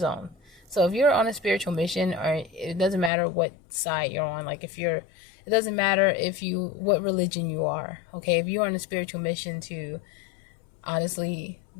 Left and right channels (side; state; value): right; drops out; at 3.1 s